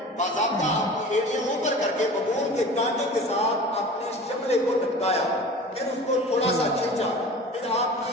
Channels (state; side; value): normal; both; correlation 0.39